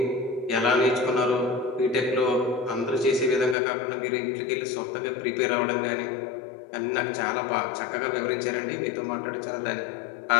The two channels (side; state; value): right; drops out; at 3.6 s